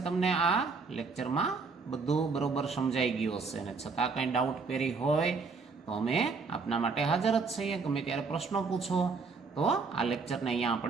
તમને આ લેક્ચરમાં બધું બરોબર સમજાઈ ગયું હશે. અને છતાં કંઈ ડાઉટ પેરી હોય તો અમે આપના માટે હાજર જ છીએ. ગમે ત્યારે પ્રશ્નો પૂછો. તો આ લેક્ચરને અહીંયા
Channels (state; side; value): quieter; left; 4.6 dB